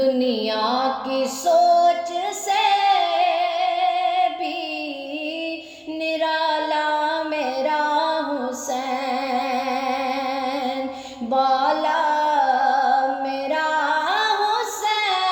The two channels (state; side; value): identical; both; correlation 1.00